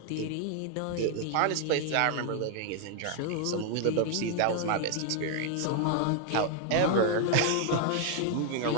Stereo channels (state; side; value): different; both; correlation 0.00